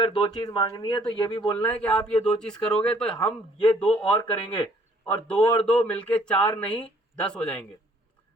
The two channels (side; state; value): both; normal; correlation 0.61